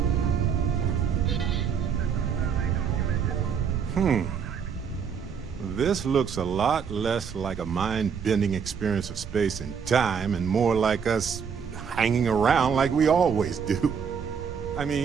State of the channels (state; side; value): quieter; left; 6.9 dB